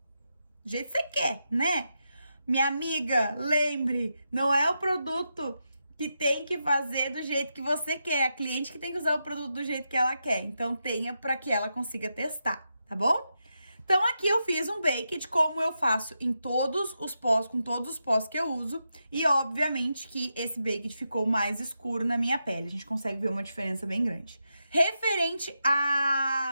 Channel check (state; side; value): inverted; both; correlation -0.86